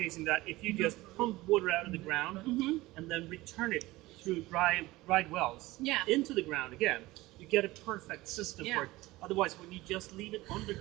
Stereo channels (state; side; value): quieter; left; 19.2 dB